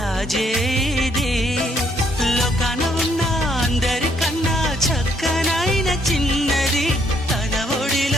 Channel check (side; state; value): both; normal; correlation 0.69